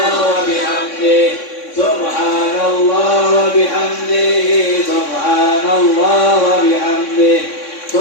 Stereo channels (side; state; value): right; late; 3.6 ms